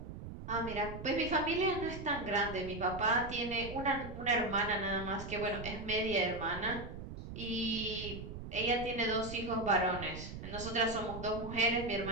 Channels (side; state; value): right; noise; rumble, 10 dB below the sound